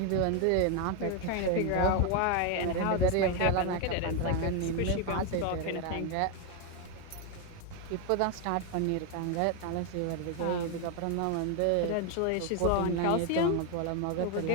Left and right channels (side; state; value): both; different; correlation 0.01